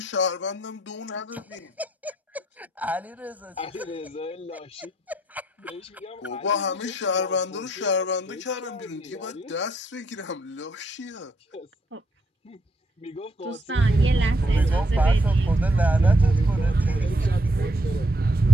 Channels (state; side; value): normal; both; correlation 0.73